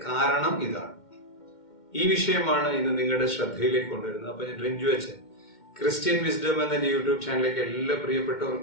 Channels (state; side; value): late; right; 2.1 ms